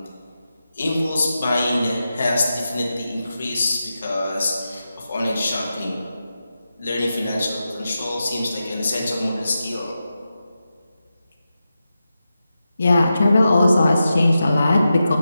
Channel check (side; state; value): both; inverted; correlation -0.90